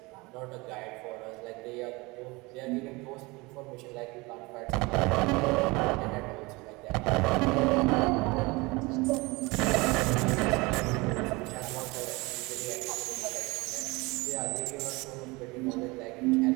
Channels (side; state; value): left; quieter; 24.4 dB